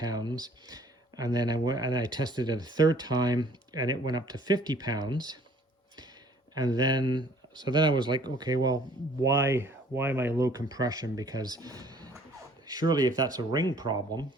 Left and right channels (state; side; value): normal; both; correlation 0.56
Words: and then I tested it a third time, and it went up to 50 pounds, and then I was like, okay, well, why am I low compression? Because surely if that's a ring problem,